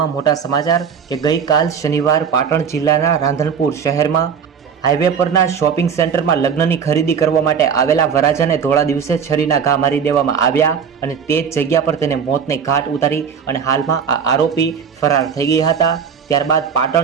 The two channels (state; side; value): quieter; left; 7.0 dB